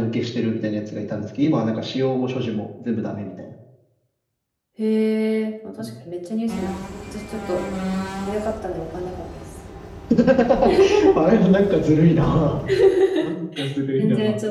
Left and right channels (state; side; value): identical; both; correlation 1.00